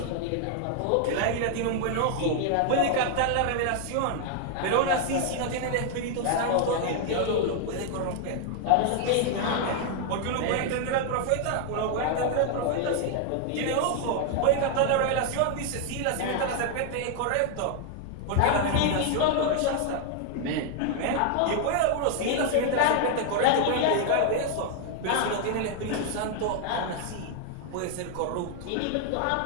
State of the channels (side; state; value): both; different; correlation 0.00